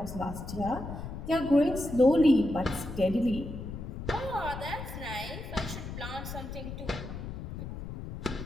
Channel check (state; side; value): noise; left; rumble, 8 dB below the sound